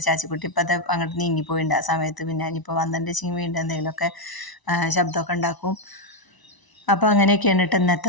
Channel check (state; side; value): late; right; 1.0 ms